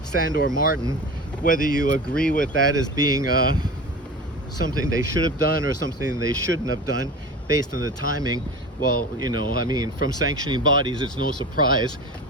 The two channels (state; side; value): normal; both; correlation 0.32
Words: Sandor Martin. Whether you agree with that as being something they should have done or something they shouldn't have done based on the timing, well, you know, I mean, from sanctioning bodies, it's no surprise.